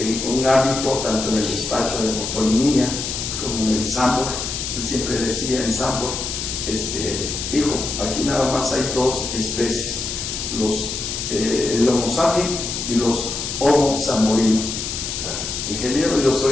en un hábito, tanto en el despacho de motolinía como en el Sambor. Él siempre decía en Sambor, hijo, aquí nada más hay dos especies, el Homo sapiens y los Homo zamborinos. Ingeniero, yo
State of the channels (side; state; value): left; noise; hiss, 4 dB below the sound